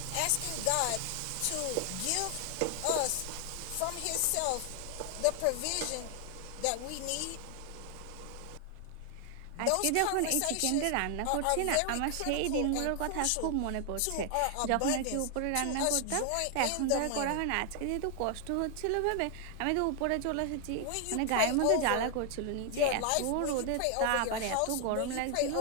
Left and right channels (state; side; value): different; both; correlation 0.00